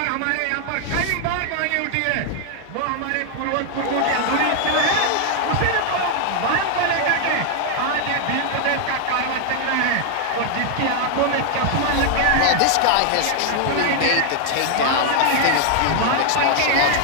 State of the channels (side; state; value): both; different; correlation 0.00